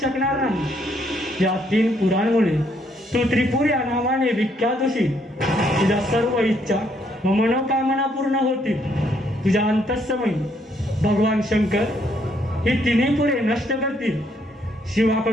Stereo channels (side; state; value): both; normal; correlation 0.71